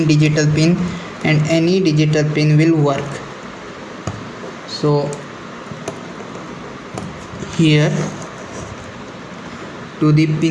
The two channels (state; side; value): identical; both; correlation 1.00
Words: digital pin and any digital pin will work. So here to the